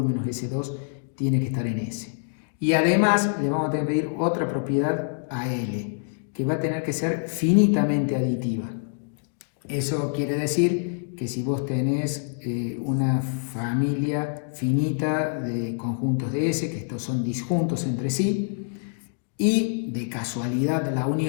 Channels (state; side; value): silent; right; digital silence